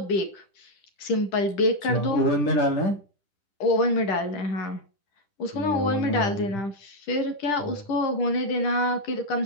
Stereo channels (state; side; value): late; right; 10 ms